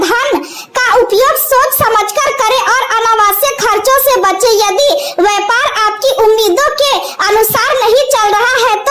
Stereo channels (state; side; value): identical; both; correlation 1.00